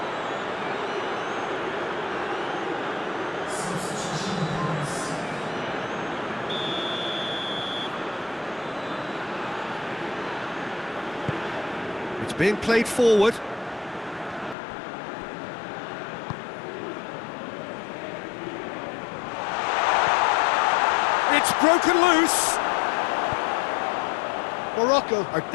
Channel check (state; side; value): drops out; right; at 14.6 s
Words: It's being played forward. It's broken loose. Morocco are